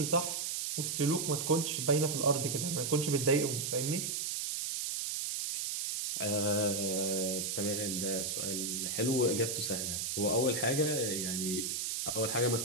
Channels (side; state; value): right; noise; hiss, 1 dB below the sound